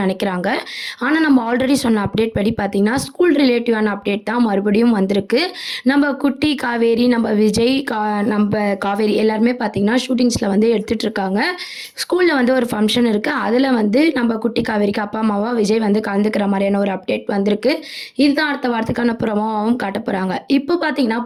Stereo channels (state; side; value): identical; both; correlation 1.00